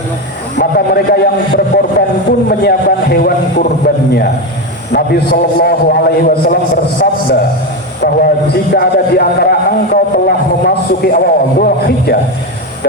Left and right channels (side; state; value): both; normal; correlation 0.13